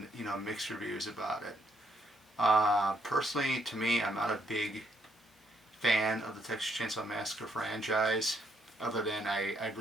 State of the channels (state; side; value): normal; both; correlation 0.74